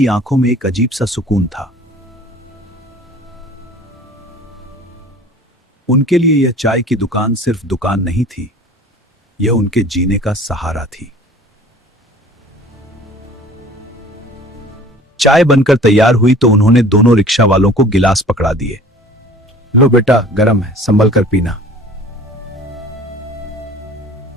आंखों में एक अजीब सा सुकून था। उनके लिए यह चाय की दुकान सिर्फ दुकान नहीं थी, यह उनके जीने का सहारा थी। चाय बनकर तैयार हुई तो उन्होंने दोनों रिक्शा वालों को गिलास पकड़ा दिए। लो बेटा, गरम है, संभल कर पीना।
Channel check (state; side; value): normal; both; correlation 0.47